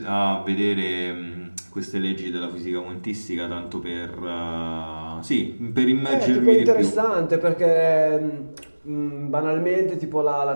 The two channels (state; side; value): inverted; both; correlation -1.00